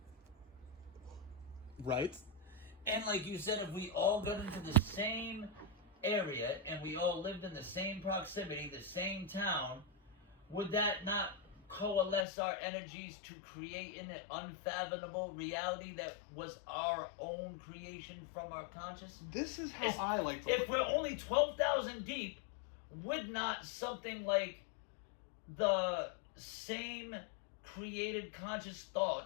Right. And like you said, if we all got into the same area and we all lived in the same proximity, the same town, would that not coalesce our energies to create an unfathomable reality that was our own creation from our conscious? This is how I like to If we're only 12,000 deep, would not something like the same created conscious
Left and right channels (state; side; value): drops out; right; at 12.2 s